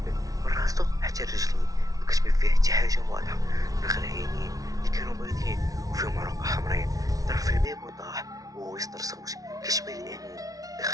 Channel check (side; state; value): left; late; 0.18 ms